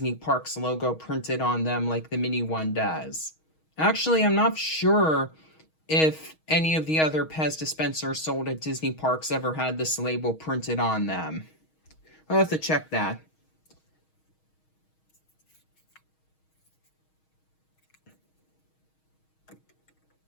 Parks logo printed on them like the mini one does. Actually, I'm not sure if any of the other Pez dispensers sold at Disney parks ever had this label printed on them. I'll have to check that.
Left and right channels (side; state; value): right; late; 6.3 ms